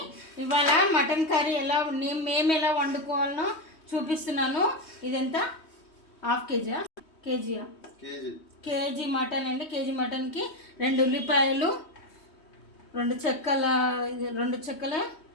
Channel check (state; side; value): late; right; 3.2 ms